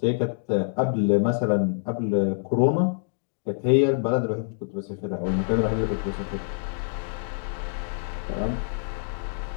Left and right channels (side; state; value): right; silent; digital silence